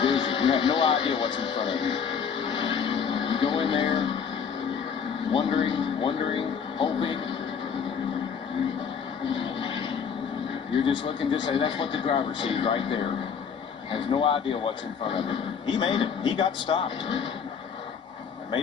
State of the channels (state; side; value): quieter; right; 6.8 dB